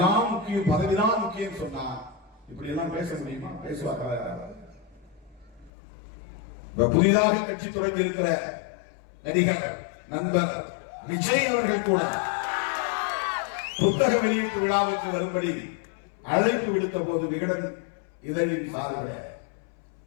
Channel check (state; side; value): drops out; right; at 5.7 s